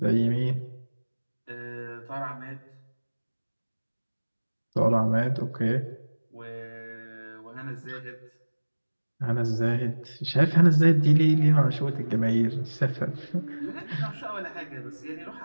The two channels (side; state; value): both; inverted; correlation -1.00